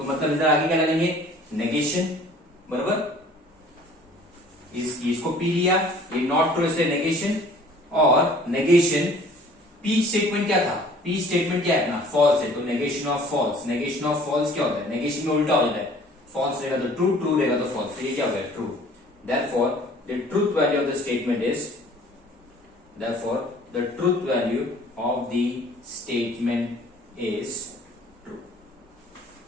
मतलब इधर आगे क्या लगाएंगे नेगेशन, बराबर, इसको P लिया, ये not true इसलिए नेगेशन, और नेगेशन P स्टेटमेंट क्या था, P स्टेटमेंट क्या है अपना फॉल्स है, तो negation of false, negation of false क्या होता है, नेगेशन में उल्टा हो जाता है, फॉल्स रहेगा तो ट्रू, ट्रू रहेगा तो फॉल्स, तो ये क्या हो गया true, therefore the truth value of the statement is, therefore the truth value of the statement is true,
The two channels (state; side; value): normal; both; correlation 0.52